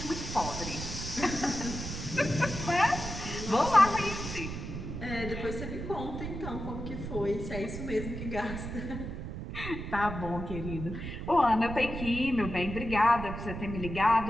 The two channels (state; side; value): noise; right; rumble, 7 dB below the sound